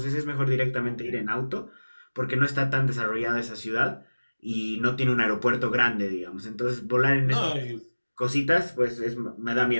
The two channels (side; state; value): both; inverted; correlation -1.00